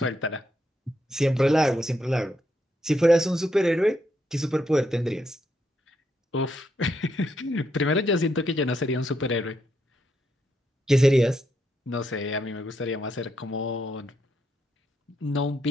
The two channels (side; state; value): both; normal; correlation 0.79